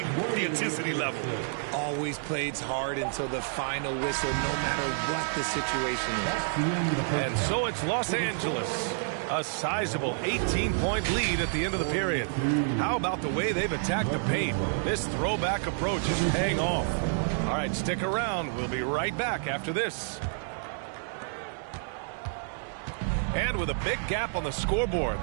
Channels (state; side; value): silent; left; 58 dB below the other